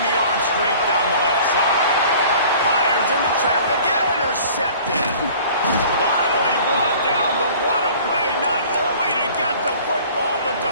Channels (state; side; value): inverted; both; correlation -0.48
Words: the arm straight down the left side. Fires into traffic, intercepted. Finally brought down, but what a play, not only to get the football, but to